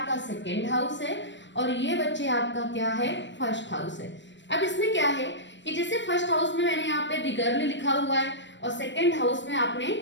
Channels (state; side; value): late; right; 0.53 ms